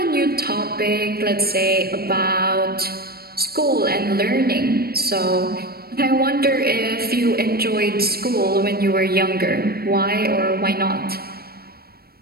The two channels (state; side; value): late; left; 0.44 ms